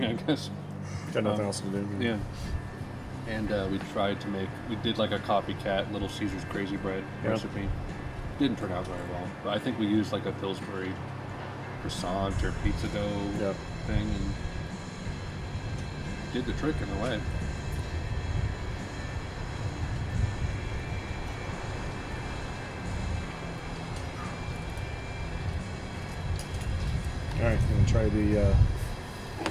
I guess. Got nothing else to do. Yeah. And we tried to we did, like, a copycat Little Caesars Crazy Bread recipe. Didn't turn out very well. But I think we used, like, a Pillsbury croissant or pizza dough thing, and did the trick in a way. All right, I'm gonna try the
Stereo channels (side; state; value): both; identical; correlation 1.00